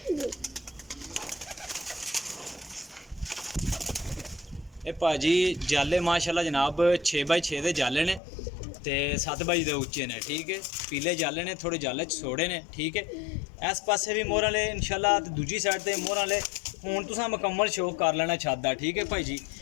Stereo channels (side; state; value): right; drops out; at 8.2 s